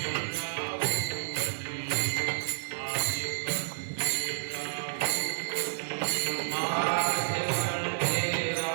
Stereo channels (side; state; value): left; silent; digital silence